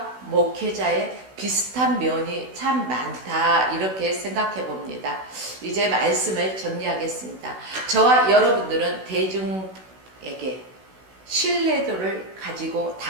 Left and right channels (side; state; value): left; late; 16 ms